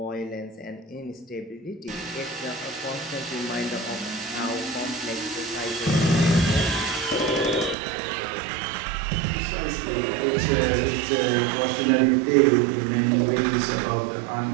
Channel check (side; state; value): left; drops out; at 7.8 s